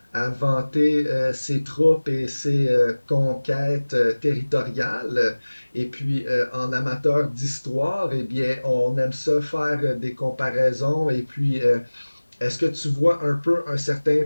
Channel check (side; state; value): both; inverted; correlation -1.00